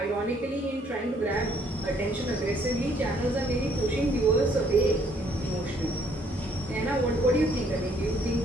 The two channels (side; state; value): both; normal; correlation 0.65